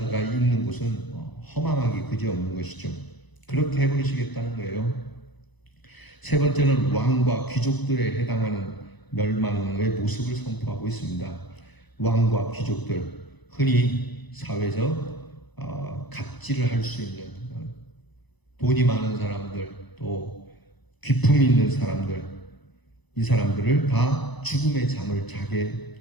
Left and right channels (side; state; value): right; late; 1.0 ms